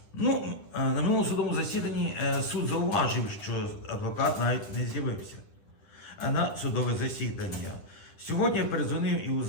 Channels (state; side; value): late; right; 10 ms